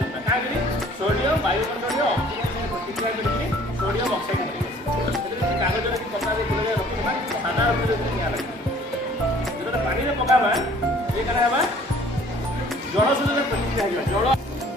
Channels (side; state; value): both; normal; correlation 0.54